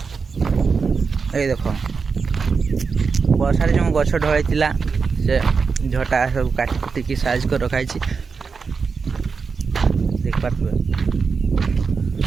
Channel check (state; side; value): quieter; left; 5.2 dB